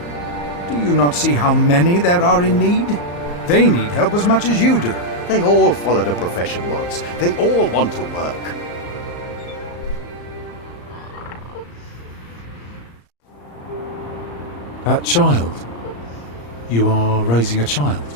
Do you not see how many there are in need? They need help as much as you do. They all followed a profession once. They all want to work. That child? You are raising a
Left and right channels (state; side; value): late; right; 34 ms